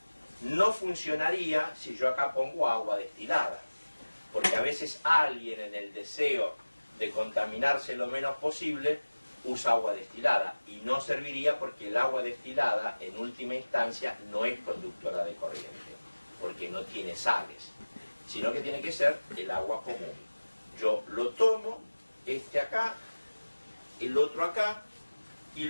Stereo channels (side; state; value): both; inverted; correlation -1.00